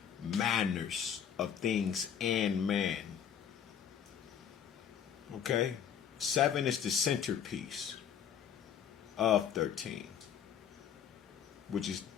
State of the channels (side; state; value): right; quieter; 8.5 dB